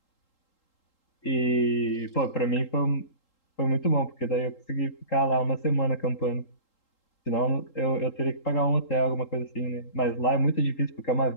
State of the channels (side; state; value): right; late; 3.8 ms